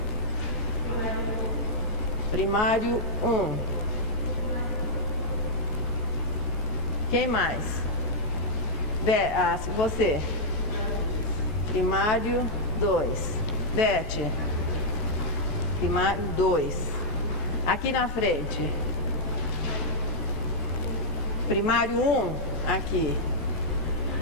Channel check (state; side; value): normal; both; correlation -0.07